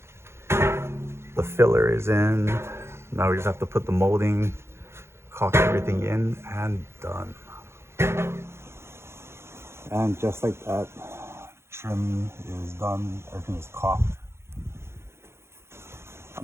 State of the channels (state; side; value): late; left; 0.13 ms